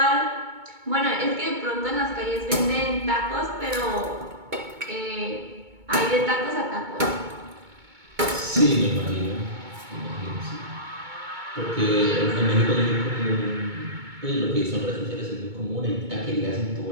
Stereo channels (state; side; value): late; left; 2.2 ms